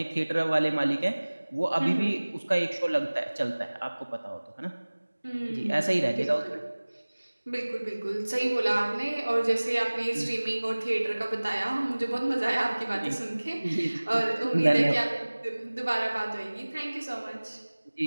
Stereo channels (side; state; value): both; inverted; correlation -1.00